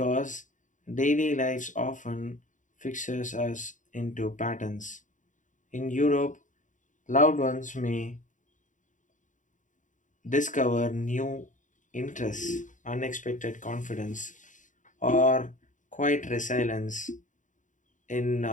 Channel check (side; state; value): right; late; 0.37 ms